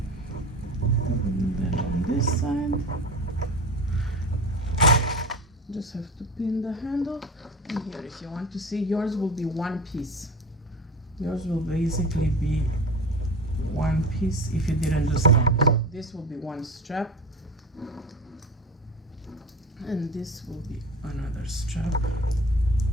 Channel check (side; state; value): both; normal; correlation 0.31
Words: And then on this side, just have to pin the handle. And here, if you want to see, yours will be one piece. Yours will basically be one piece if you didn't do strap. So this will be one strap, and this will be another strap.